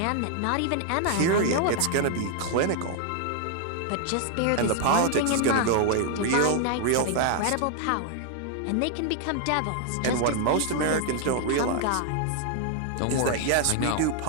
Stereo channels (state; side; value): different; both; correlation 0.00